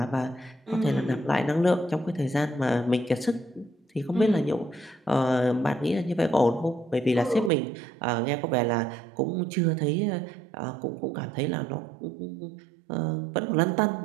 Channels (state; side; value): drops out; left; at 7.5 s